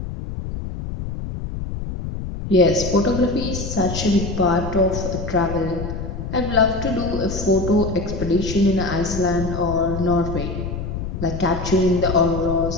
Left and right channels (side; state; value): left; noise; rumble, 6 dB below the sound